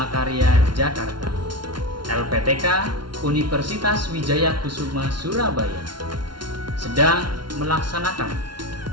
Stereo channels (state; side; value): late; left; 0.72 ms